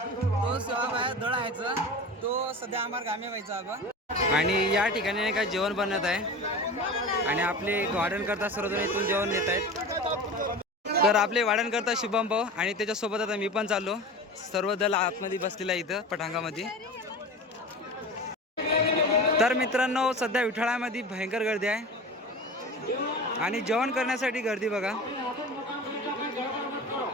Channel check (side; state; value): both; normal; correlation 0.32